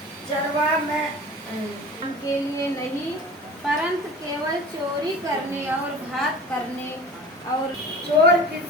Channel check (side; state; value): both; normal; correlation 0.39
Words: चरवा में के लिए नहीं, परंतु केवल चोरी करने और घात करने और चोर